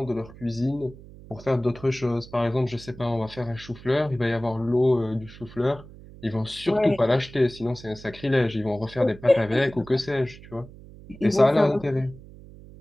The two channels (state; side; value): noise; right; hum, 19 dB below the sound